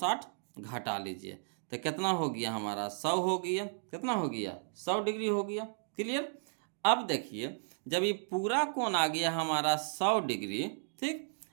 घटा लीजिए, तो कितना हो गया हमारा 100 हो गया। कितना हो गया 100 डिग्री हो गया। क्लियर। अब देखिए जब ये पूरा कोण आ गया हमारा 100 डिग्री, ठीक,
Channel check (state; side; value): silent; left; digital silence